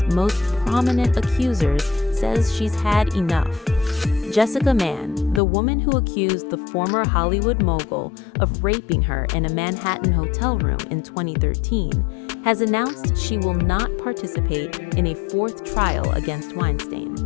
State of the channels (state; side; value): drops out; right; at 5.4 s